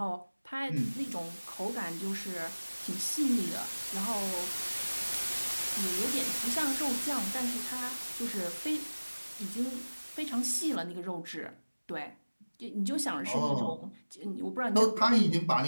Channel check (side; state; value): both; inverted; correlation -1.00